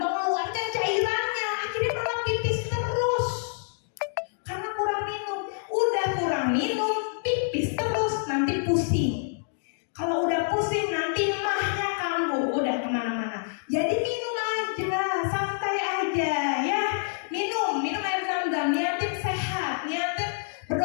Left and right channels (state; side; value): silent; right; digital silence